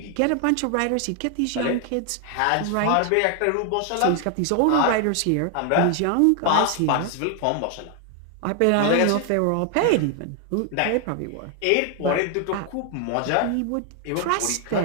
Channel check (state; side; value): different; both; correlation 0.00